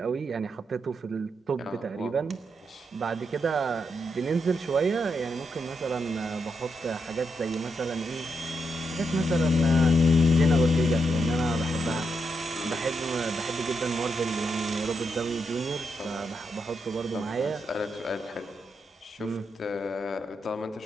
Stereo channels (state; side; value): normal; both; correlation 0.82